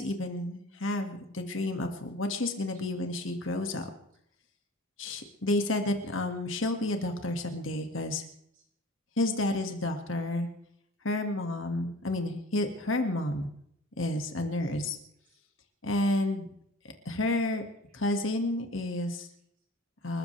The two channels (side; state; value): both; normal; correlation 0.44